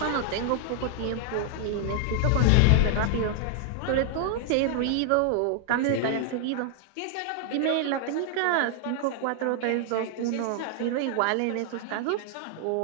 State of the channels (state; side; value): different; both; correlation 0.00